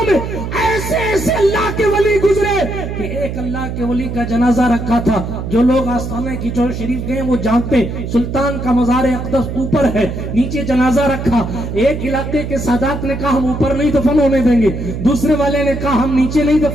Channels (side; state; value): right; noise; hum, 6 dB below the sound